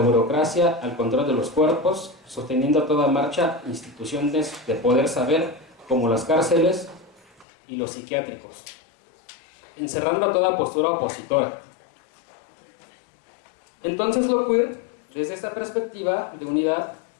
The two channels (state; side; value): drops out; right; at 7.5 s